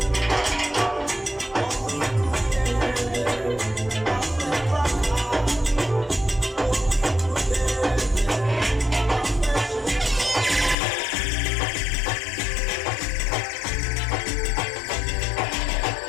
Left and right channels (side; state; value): right; drops out; at 10.8 s